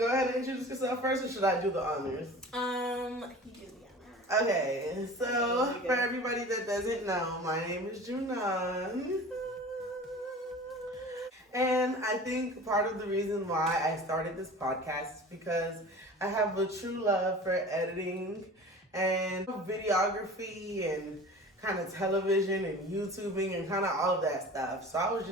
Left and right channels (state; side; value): normal; both; correlation 0.39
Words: ahead and introduce yourself first, or should I do the honors? You do the honors. Okay, so for everybody that doesn't know, my name is Junan. And I think part of the reason why I started this podcast is because I have a true love for editing and videography and kind of television and YouTubing and kind of all of that stuff. So I was